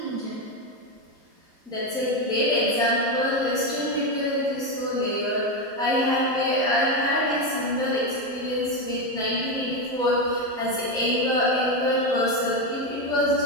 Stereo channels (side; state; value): both; normal; correlation 0.11